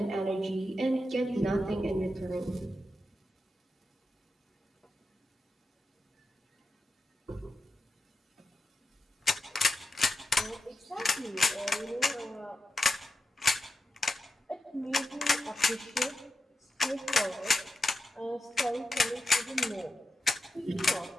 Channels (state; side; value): normal; both; correlation 0.89